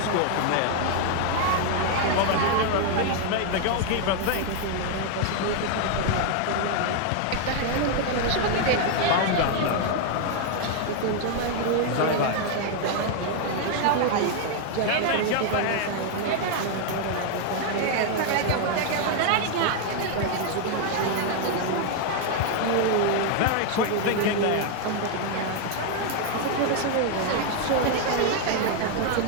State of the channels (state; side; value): different; both; correlation 0.00